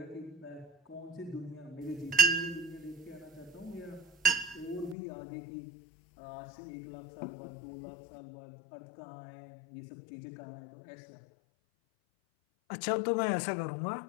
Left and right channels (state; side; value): drops out; right; at 5.0 s